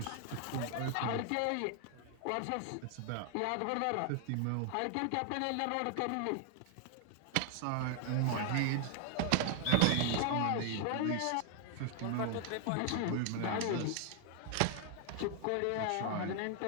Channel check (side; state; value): both; different; correlation 0.00